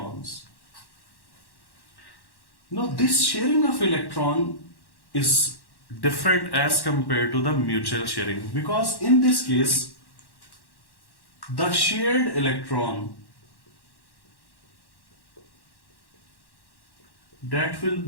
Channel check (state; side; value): late; right; 1.1 ms